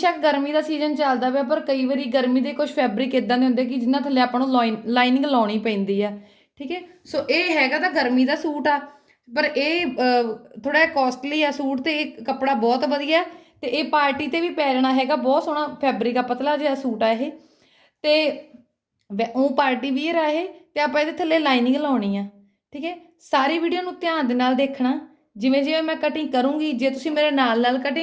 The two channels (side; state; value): both; identical; correlation 1.00